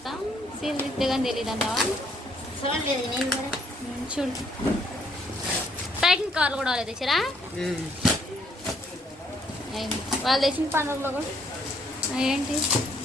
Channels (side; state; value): both; normal; correlation 0.68